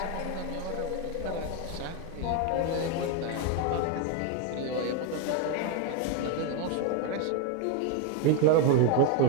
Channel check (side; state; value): both; different; correlation 0.01